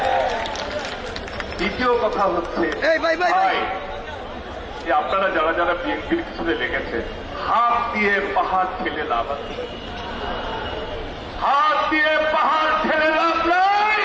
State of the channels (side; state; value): both; identical; correlation 1.00